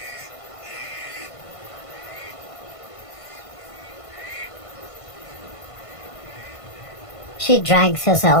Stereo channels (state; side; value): late; right; 1.5 ms